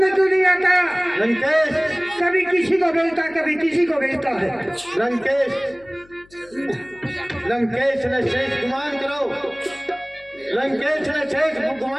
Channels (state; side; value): noise; left; hum, 28 dB below the sound